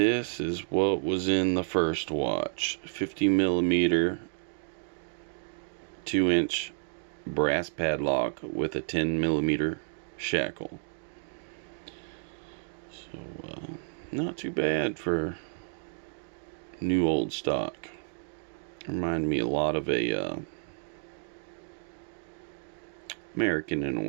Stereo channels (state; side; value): silent; left; digital silence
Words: is what was in the first watch. 50 millimeter 2-inch brass padlock with a 10 millimeter shackle. So not too bad for new old stock. Remind me a lot of a American in a